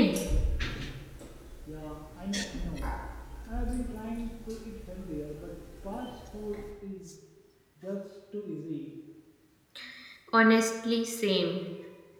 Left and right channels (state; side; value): identical; both; correlation 1.00